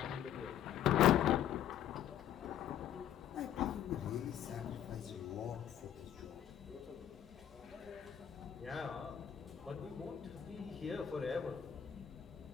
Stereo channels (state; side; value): quieter; right; 10.3 dB